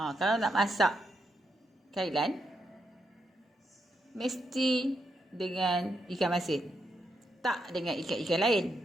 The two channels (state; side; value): normal; both; correlation 0.82